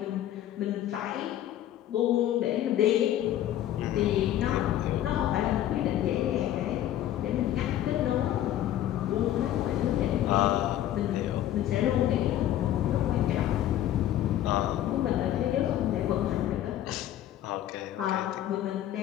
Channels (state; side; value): quieter; right; 12.4 dB